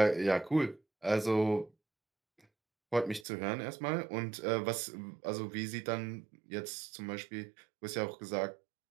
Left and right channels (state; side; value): drops out; left; at 3.2 s